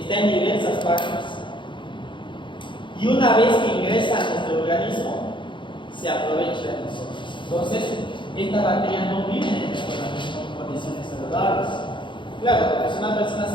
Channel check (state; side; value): late; right; 0.23 ms